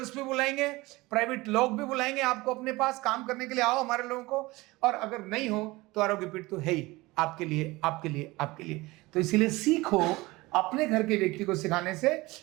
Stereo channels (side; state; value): left; quieter; 21.2 dB